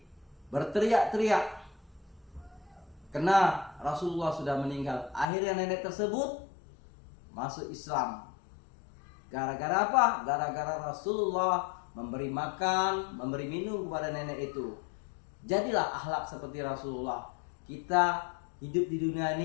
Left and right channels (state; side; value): drops out; right; at 5.3 s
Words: berteriak-teriak, karena Rasulullah sudah meninggal. Akhirnya nenek tersebut masuk Islam. Gara-gara apa? Gara-gara Rasulullah memberi makan, memberi minum kepada nenek itu. Jadilah akhlak seperti Rasulullah. Kita hidup di dunia